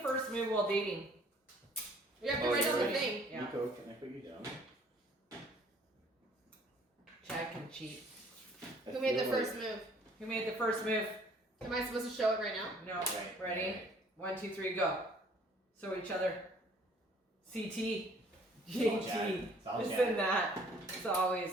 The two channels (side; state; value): both; normal; correlation 0.57